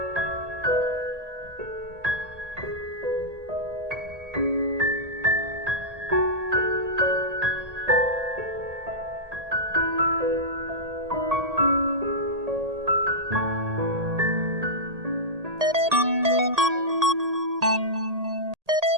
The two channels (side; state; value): left; late; 1.8 ms